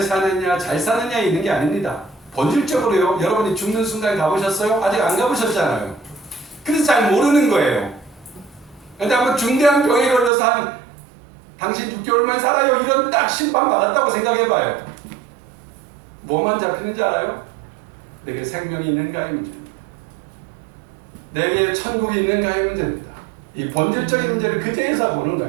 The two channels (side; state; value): left; drops out; at 10.3 s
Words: 잘 사느냐에 있는 게 아닙니다. 본질적으로요. 여러분이 죽는 순간 가보셨어요? 아직 안 가보셨잖아요. 그래서 잘 모르는 거예요. 근데 한번 중대한 병에 걸려서 한 당신 6개월만 살아요. 이런 딱 심판 받았다고 생각해봐요. 뭐만 잡히는지 알아요? 내게 생명이 있는가의 문제입니다. 내게 천국이 있는가의 문제입니다. 이 본질적인 문제를 그제에서 보는